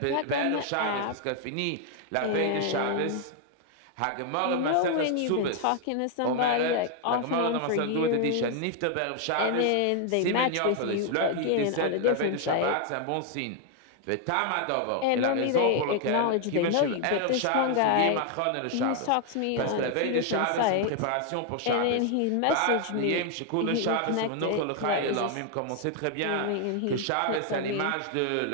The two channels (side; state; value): both; different; correlation 0.00